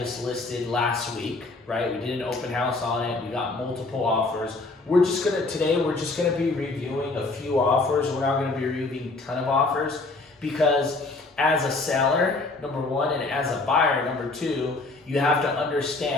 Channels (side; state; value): right; quieter; 3.3 dB